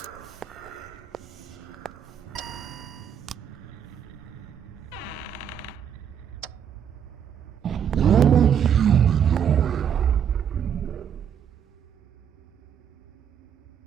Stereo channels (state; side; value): quieter; left; 8.5 dB